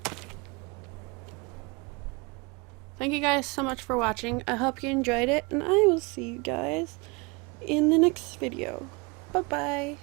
Thank you guys so much for watching. I hope you enjoyed it, and I will see you guys in the next video. Bye-bye.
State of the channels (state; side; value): quieter; left; 28.5 dB